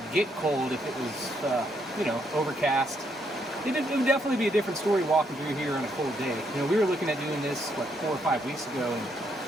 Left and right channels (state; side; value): normal; both; correlation 0.75